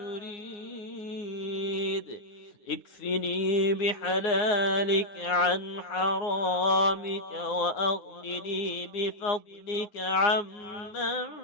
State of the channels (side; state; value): right; late; 9.7 ms